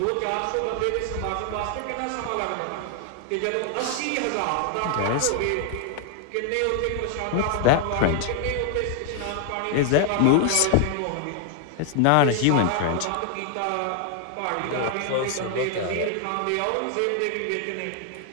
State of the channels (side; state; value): both; different; correlation 0.00